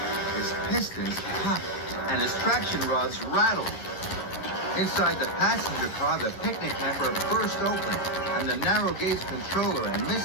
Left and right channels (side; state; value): right; late; 11 ms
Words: His pistons popped and his traction rods rattled. Inside the passenger car, the picnic hamper burst open, and the narrow gauge controller and